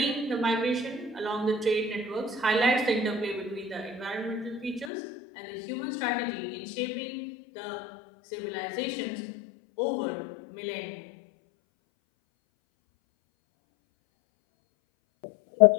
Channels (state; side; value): drops out; right; at 4.9 s